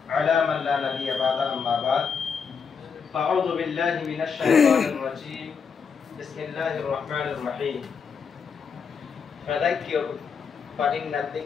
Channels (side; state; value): right; quieter; 6.0 dB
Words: على من لا نبي بعد أما بعد فأعوذ بالله من الشيطان الرجيم بسم الله الرحمن الرحيم فذكر فإن